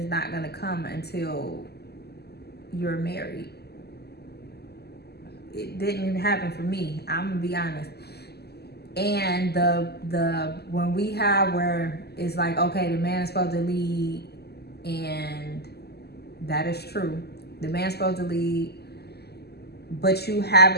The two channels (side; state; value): right; late; 0.47 ms